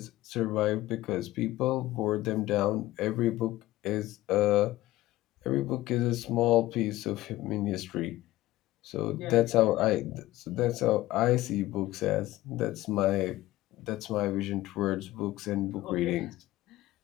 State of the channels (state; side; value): quieter; right; 16.6 dB